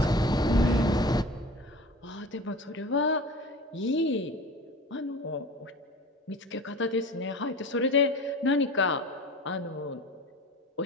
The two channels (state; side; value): normal; both; correlation 0.37